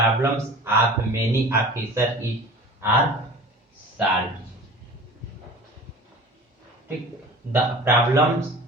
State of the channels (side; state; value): both; normal; correlation 0.40